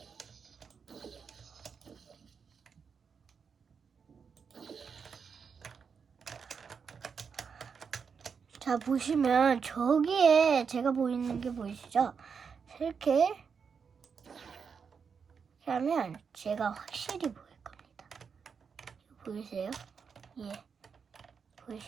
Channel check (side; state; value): left; quieter; 6.1 dB